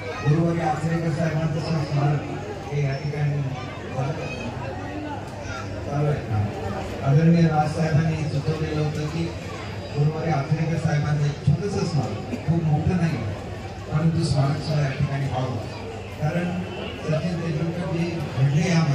गुरुवारी आचरेकर साहेबांचं स्मारक हे या ठिकाणी चालू आहे। आदरणीय राजसाहेबांनी सुचवलेलं होतं की गुरुवारी आचरेकर साहेबांचं एक छोटंसं स्मारक, खूप मोठं नाही परंतु स्मारक सुद्धा या ठिकाणी व्हावं, कारण सचिन तेंडुलकर जे घडले या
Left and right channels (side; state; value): both; identical; correlation 1.00